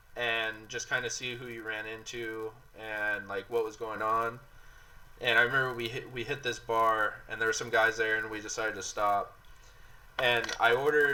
and just kind of see who you ran into and like what was going on. And I remember we hit this bar, and there were some guys there, and we decided to stop. And I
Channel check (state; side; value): identical; both; correlation 1.00